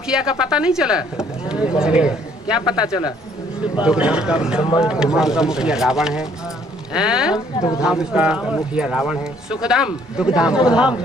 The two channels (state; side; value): normal; both; correlation 0.63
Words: का पता नहीं चला? क्या पता चला? दुख धाम का मुखिया रावण है। दुख धाम का मुखिया रावण है। सुख धाम, दुख